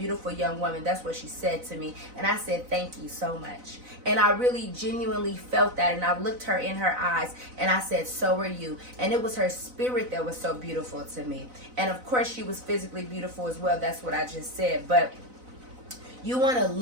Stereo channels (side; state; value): left; late; 4.0 ms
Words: young woman. That's what she said to me. And I said, thank you so much. And I really genuinely felt that. And I looked her in her eyes and I said, so are you. And it was her spirit that was so beautiful to me. And of course she was physically beautiful as well. That's what I just said. But you want to